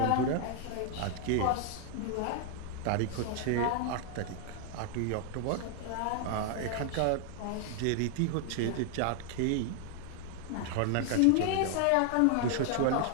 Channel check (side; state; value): both; different; correlation 0.00